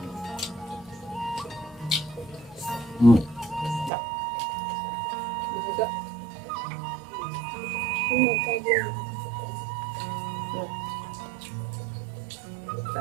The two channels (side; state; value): left; drops out; at 3.9 s